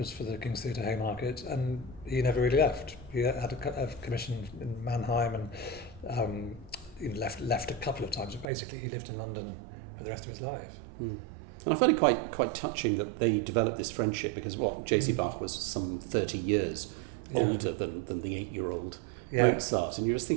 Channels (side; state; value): left; drops out; at 8.5 s